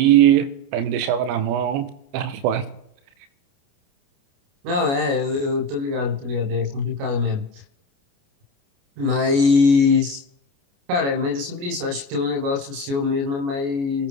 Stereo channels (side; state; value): left; late; 29 ms